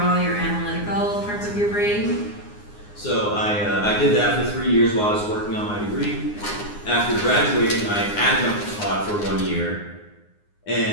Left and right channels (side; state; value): right; late; 9.7 ms